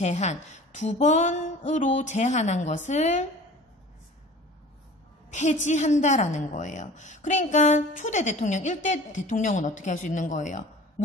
2번으로 제한한 것을 폐지한다라는 거예요. 그러니까 초대 대통령, 1대 대통령은 어떻게 할 수 있는 거예요?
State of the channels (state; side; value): normal; both; correlation 0.44